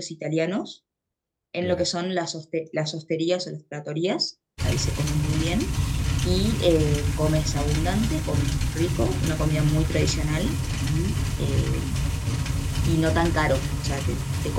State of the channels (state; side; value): identical; both; correlation 1.00